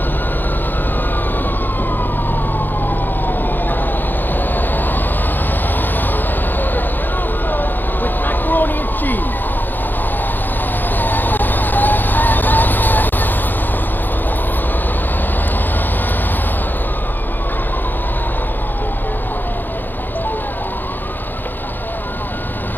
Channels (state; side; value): late; right; 0.090 ms